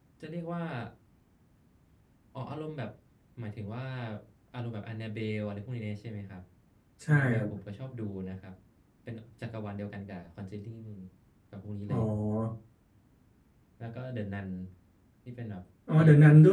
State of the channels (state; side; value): identical; both; correlation 1.00